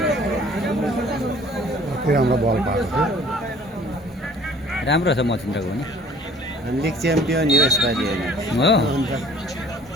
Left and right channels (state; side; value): normal; both; correlation 0.52